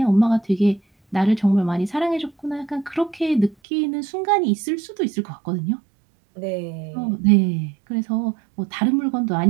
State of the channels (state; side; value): drops out; left; at 3.6 s